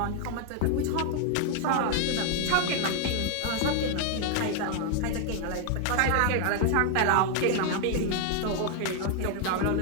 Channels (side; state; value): both; different; correlation 0.00